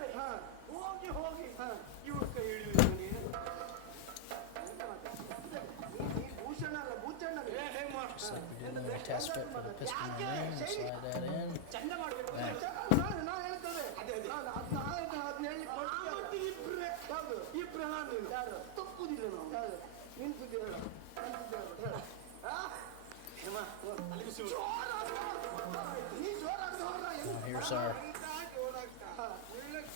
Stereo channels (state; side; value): different; both; correlation 0.00